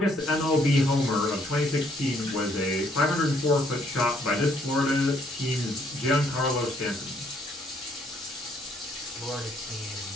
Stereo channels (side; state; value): both; normal; correlation 0.67